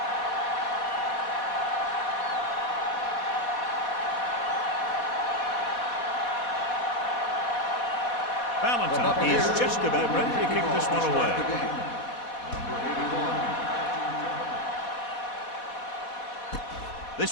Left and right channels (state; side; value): late; right; 4.1 ms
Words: Valentine is just about ready to kick this one away.